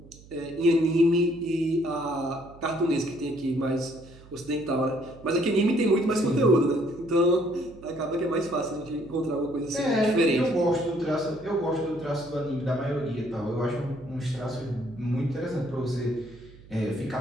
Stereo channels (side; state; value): right; noise; hum, 21 dB below the sound